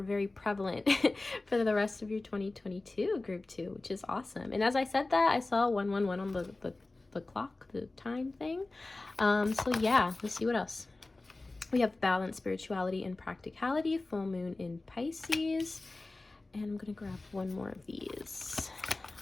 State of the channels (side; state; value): right; quieter; 3.1 dB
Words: very prevalent for the rest of your 2022, group 2, which is awesome. And as I said that, I saw 111 on the clock, the time thing. So yeah, let's see what else. We have balance, spirituality, and practicality, full moon in Pisces. And I'm gonna grab one more of these.